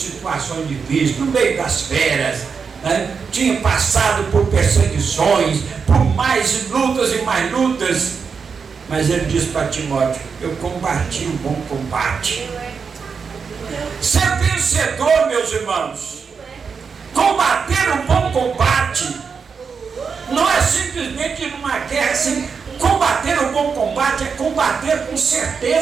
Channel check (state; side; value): quieter; left; 5.7 dB